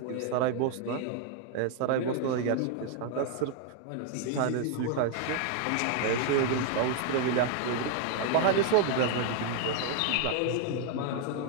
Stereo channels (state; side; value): different; both; correlation 0.00